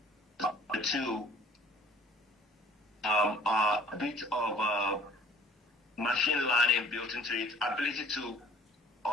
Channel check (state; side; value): normal; both; correlation 0.53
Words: The two a bit of machine learning built into it, ability to